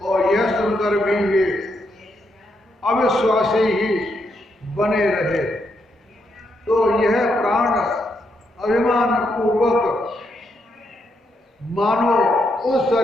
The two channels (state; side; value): normal; both; correlation 0.79